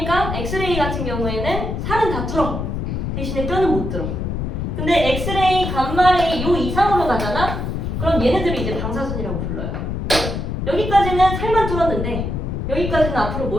엑스레이 같은 경우에는 살은 다 뚫어. 대신에 뼈는 못 뚫어. 근데 엑스레이, 감마레이 요 이상으로 가잖아? 그럼 얘네들이 이제 방사선이라고 불러요. 여기까지는 살만 뚫었는데 여기까지는 앞으로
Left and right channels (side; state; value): left; noise; rumble, 3 dB below the sound